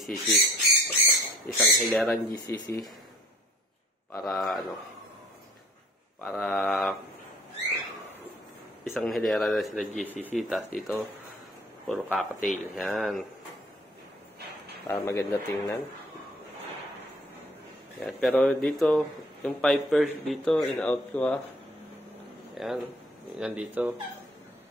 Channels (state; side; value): normal; both; correlation 0.56